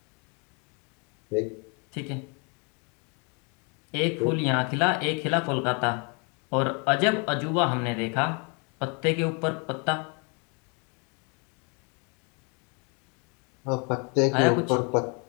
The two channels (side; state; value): right; quieter; 34.5 dB